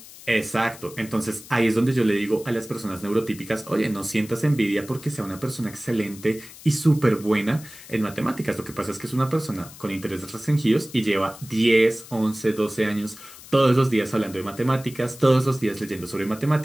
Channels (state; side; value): noise; left; hiss, 18 dB below the sound